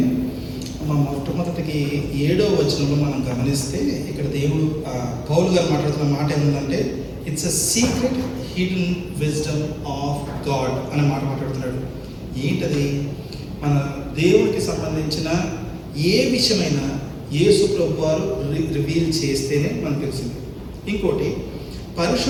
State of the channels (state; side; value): identical; both; correlation 1.00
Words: మొట్టమొదటికి 7వ వచనంలో మనం గమనిస్తే ఇక్కడ దేవుడు పౌలు గారు మాట్లాడుతున్న మాట ఏముందంటే, it's a secret hidden wisdom of God అనే మాట మాట్లాడుతున్నాడు. ఏంటది? మన దేవుడికి సంబంధించిన ఏ విషయమైనా యేసు ప్రభు వారు రివీల్ చేస్తేనే మనకు తెలిసింది. ఇంకోటి,